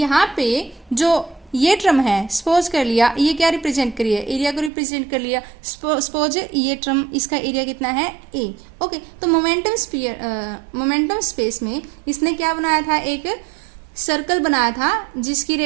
पे जो ये टर्म है, सपोज कर लिया ये क्या रिप्रेजेंट करिए, एरिया को रिप्रेजेंट कर लिया, सपोज ये टर्म इसका एरिया कितना है, a। ओके, तो मोमेंटम स्पेस में इसने क्या बनाया था, एक सर्कल बनाया था जिसकी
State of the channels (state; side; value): drops out; left; at 4.7 s